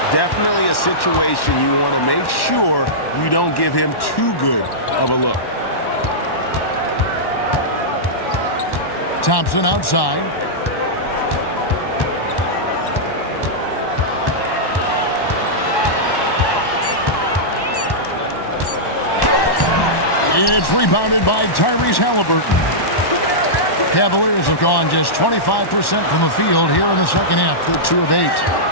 Definitely a situation you want to make sure you don't give him too good of a look. Thompson outside. It's rebounded by Tyrese Halliburton. Cavaliers have gone just 25% from the field here in the second half. They're 2 of 8.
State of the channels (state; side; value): late; right; 1.1 ms